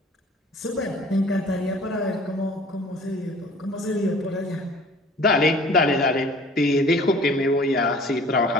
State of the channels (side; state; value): both; normal; correlation 0.49